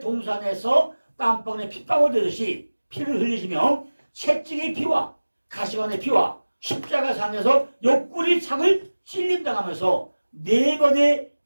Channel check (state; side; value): inverted; both; correlation -1.00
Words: 동산에서 땀방울에 핏방울 되듯이 피를 흘리시며 채찍의 피와 가시관의 피와 십자가상에서 옆구리 창을 찔림당하면서 4번의